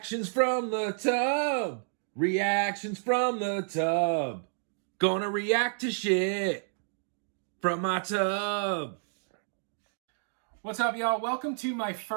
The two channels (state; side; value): silent; left; digital silence